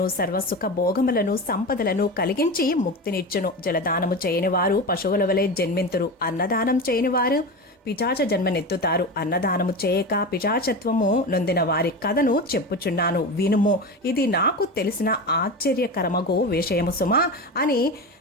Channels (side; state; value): both; normal; correlation 0.24